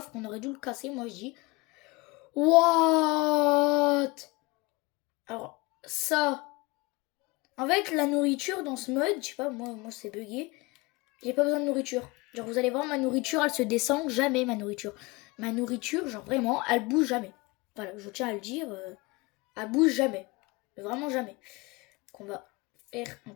On aurait dû le casser, moi je dis. What? Alors, ça. En fait, la nourriture dans ce mode, je sais pas, moi c'est bugué. J'ai pas besoin de nourriture. Genre, vous allez voir, ma nourriture, elle se descend jamais, ma nourriture. Ma nourriture, genre vraiment, elle bouge jamais. Voilà, je tiens à le dire, elle bouge jamais. Vraiment jamais. Qu'on va faire un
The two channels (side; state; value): right; quieter; 24.2 dB